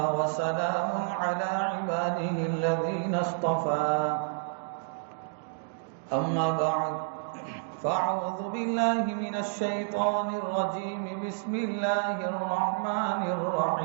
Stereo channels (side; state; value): left; silent; digital silence